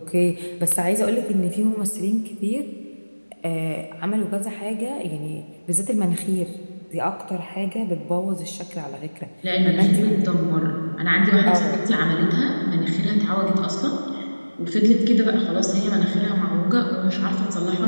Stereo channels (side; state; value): both; inverted; correlation -1.00